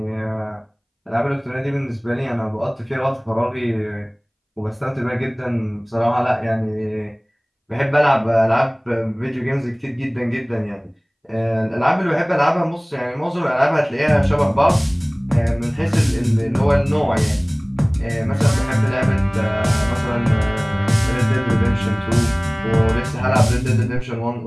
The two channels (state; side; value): identical; both; correlation 1.00